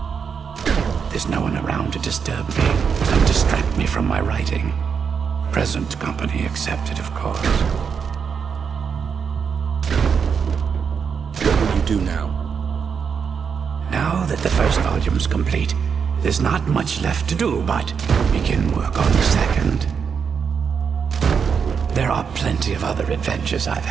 There's no one around to disturb me and distract me from my writing. Present company accepted, of course. What will you do now? Now that the first volume's complete, there's not much left to do but begin work on the second. There are plenty of other adventures I've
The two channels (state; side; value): quieter; left; 6.5 dB